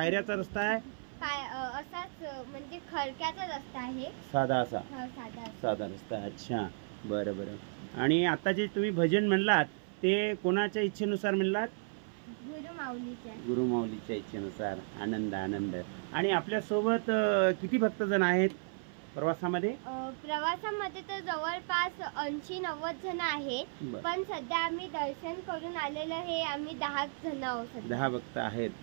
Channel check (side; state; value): left; silent; 55 dB below the other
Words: रस्ता आहे? असाच म्हणजे खडक्याचा रस्ता आहे. साधा रस्ता. अच्छा बरं. आणि आता जे तुम्ही भजन म्हणलात ते कोणाच्या इच्छेनुसार म्हणलात? गुरुमाऊलीच्या इच्छेनुसार. आनंद. आणि आपल्या सोबत किती भक्तजण आहेत प्रवासामध्ये? प्रवासामध्ये तर जवळपास 80-90 जण आहेत. पण सध्या आम्ही दर्शन करून आलेलं हे आम्ही 10 जण आहोत. 10 भक्त आहेत.